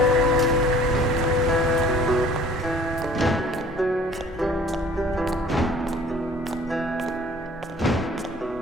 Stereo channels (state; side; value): normal; both; correlation 0.51